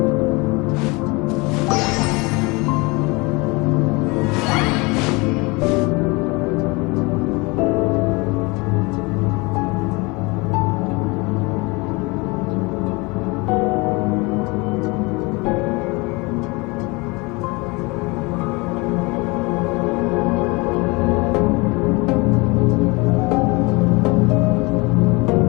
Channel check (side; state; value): right; quieter; 26.2 dB